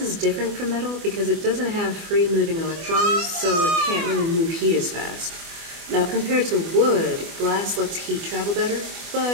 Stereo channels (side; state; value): left; late; 24 ms